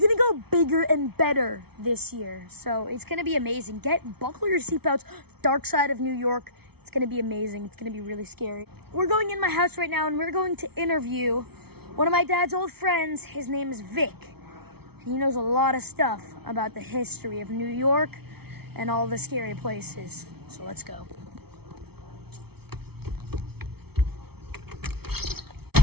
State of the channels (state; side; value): late; left; 0.96 ms